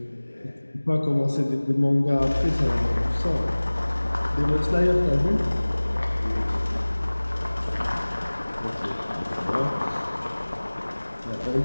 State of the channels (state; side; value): inverted; both; correlation -1.00